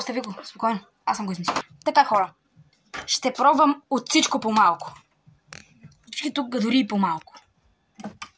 го. Спокойно. Аз съм го измислил. Така, хора. Ще пробвам от всичко по-малко. Всички тук дори и по-малко.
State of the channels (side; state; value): both; identical; correlation 1.00